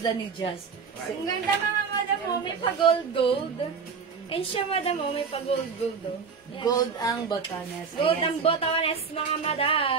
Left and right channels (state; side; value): quieter; left; 5.6 dB